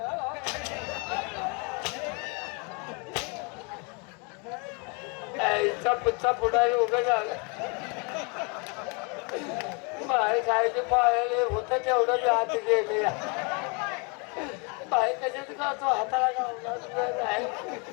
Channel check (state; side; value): quieter; right; 32.8 dB